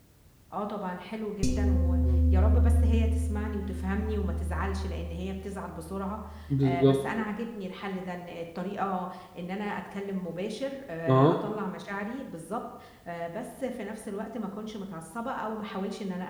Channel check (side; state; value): both; identical; correlation 1.00